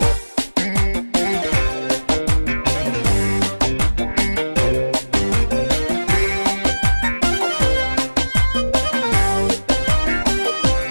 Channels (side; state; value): both; inverted; correlation -1.00